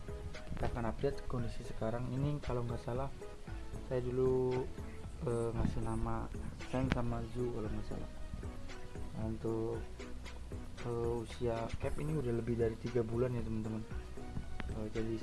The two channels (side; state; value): both; identical; correlation 1.00